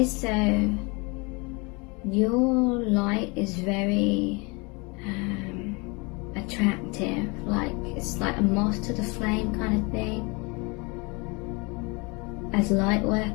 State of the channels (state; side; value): quieter; right; 28.8 dB